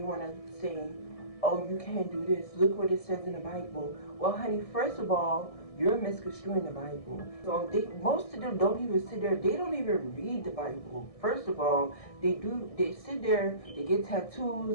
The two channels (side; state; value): right; late; 1.6 ms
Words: want to say, oh, you can't do this. Look what it says in the Bible. Well, honey, first of all, you're misconstruing the Bible. So most of them don't even sit there. They don't even read the Bible. First of all, they sit there, they get